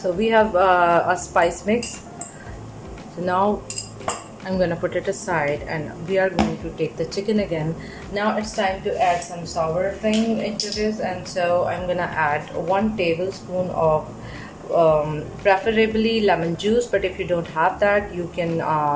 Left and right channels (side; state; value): both; identical; correlation 1.00